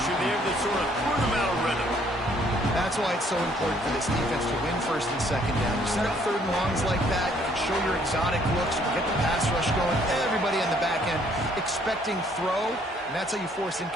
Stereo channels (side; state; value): both; normal; correlation 0.64